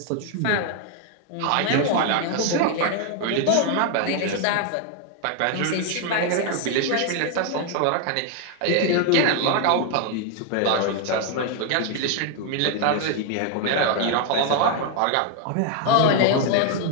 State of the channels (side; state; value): both; different; correlation 0.00